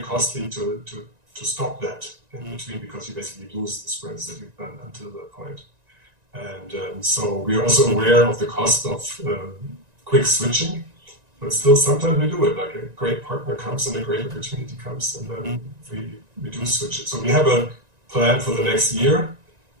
costly to stop that in between, because you basically lose the sprints that you've done until that point. And so we are also aware of the cost of quick switching. But still, sometimes we do it. Like a great partner comes and a great opportunity comes, and then we do switch it. So we have a plan for the next year,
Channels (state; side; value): late; left; 1.9 ms